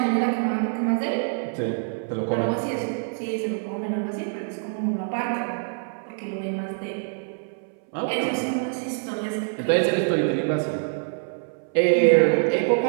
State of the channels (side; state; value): left; silent; 62 dB below the other